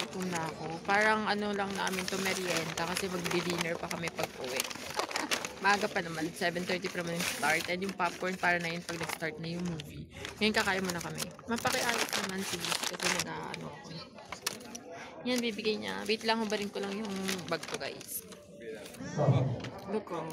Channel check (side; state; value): both; identical; correlation 1.00